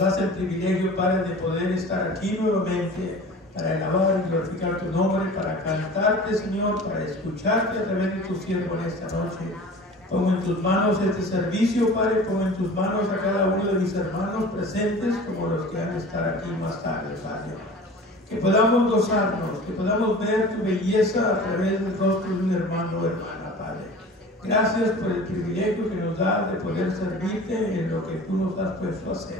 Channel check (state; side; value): normal; both; correlation 0.40